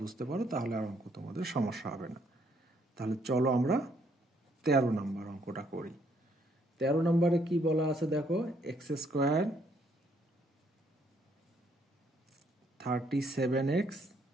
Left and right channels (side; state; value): both; normal; correlation 0.69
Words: বুঝতে পারো তাহলে আর অঙ্ক তোমাদের সমস্যা হবে না। তাহলে চলো আমরা 13 নম্বর অঙ্কটা করি। 13 নম্বরে কি বলা আছে দেখো, x² 37x